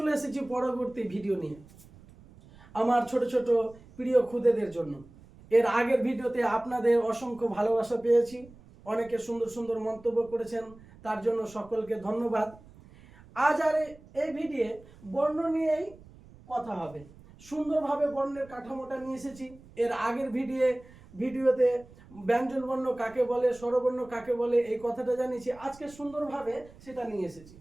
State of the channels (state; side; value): noise; right; rumble, 23 dB below the sound